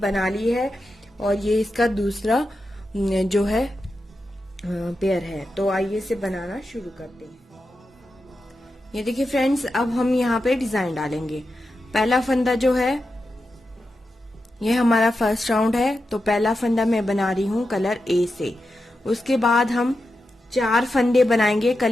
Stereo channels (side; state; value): both; normal; correlation 0.89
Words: ली है और ये इसका दूसरा जो है पेयर है। तो आइए इसे बनाना शुरू करते हैं। ये देखिए फ्रेंड्स, अब हम यहाँ पे डिजाइन डालेंगे। पहला फंदा जो है ये हमारा फर्स्ट राउंड है, तो पहला फंदा मैं बना रही हूँ कलर ए से। उसके बाद हम 4 फंदे बनाएंगे